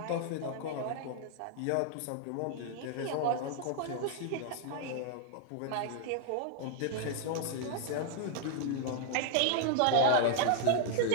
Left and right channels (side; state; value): both; different; correlation 0.00